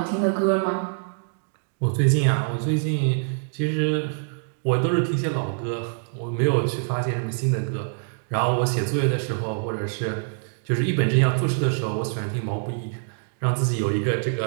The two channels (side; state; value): left; silent; digital silence